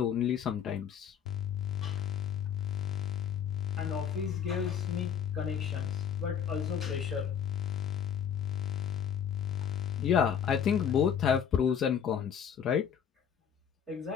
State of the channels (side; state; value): right; quieter; 8.2 dB